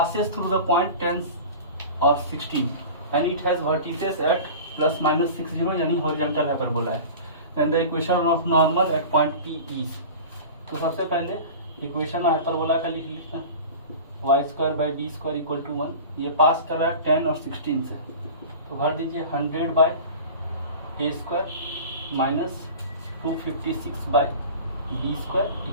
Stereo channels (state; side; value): inverted; both; correlation -0.36